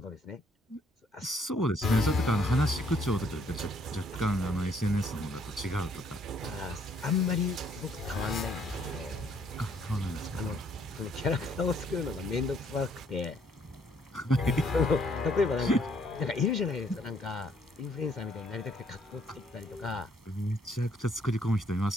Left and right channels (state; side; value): normal; both; correlation 0.67